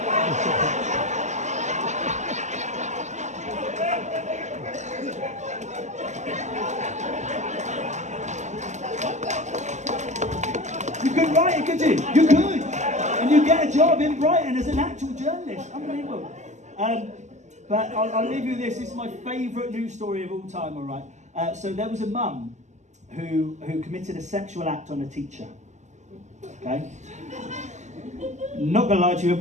You could write it, could you? You could. And you get a job in Brighton as an actual journalist. Unbelievable. But I'll leave you with this. This is my favourite news story of all time, all right? So there was a mum who committed a sexual act on a teacher. Okay? Not going to lie to you,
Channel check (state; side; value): late; left; 0.34 ms